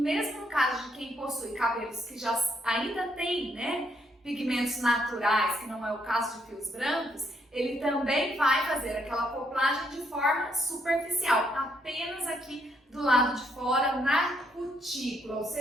no caso de quem possui cabelos que já ainda tem, né, pigmentos naturais, que não é o caso de fios brancos, ele também vai fazer aquela acoplagem de forma superficial, apenas aqui do lado de fora, na cutícula, ou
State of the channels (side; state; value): both; normal; correlation 0.73